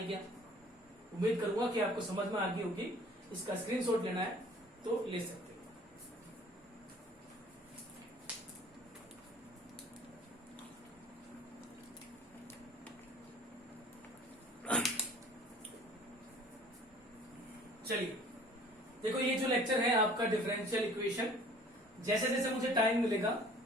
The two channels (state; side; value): normal; both; correlation 0.51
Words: क्या? उम्मीद करूंगा कि आपको समझ में आ गई होगी। इसका स्क्रीनशॉट लेना है तो ले सकते हो। चलिए देखो, ये जो लेक्चर है आपका डिफरेंशियल इक्वेशन, जैसे जैसे मुझे टाइम मिलेगा